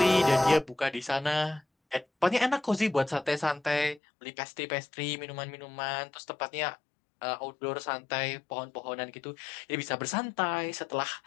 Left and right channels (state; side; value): drops out; right; at 4.0 s